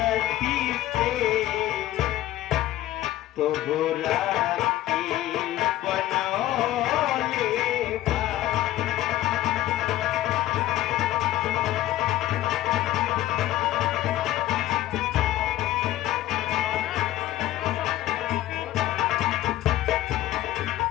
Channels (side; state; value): right; quieter; 14.7 dB